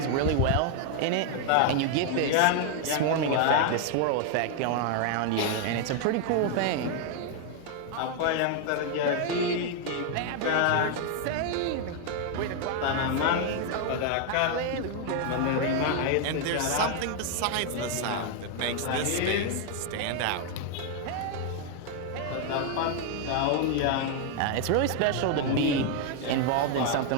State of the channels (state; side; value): different; both; correlation 0.00